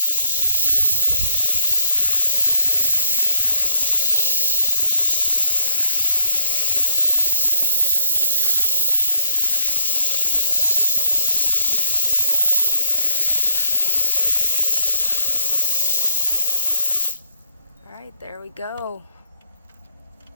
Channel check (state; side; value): inverted; both; correlation -0.70